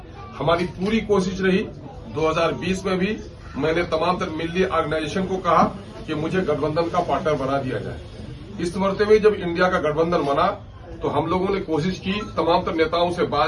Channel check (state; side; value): identical; both; correlation 1.00